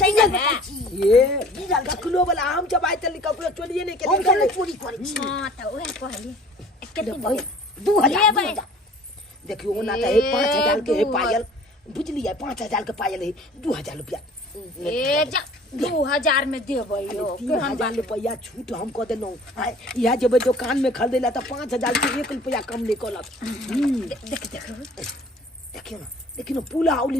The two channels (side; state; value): both; normal; correlation 0.49